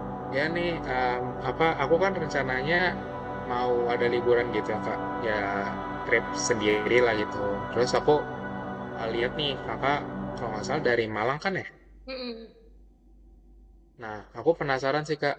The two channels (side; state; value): both; identical; correlation 1.00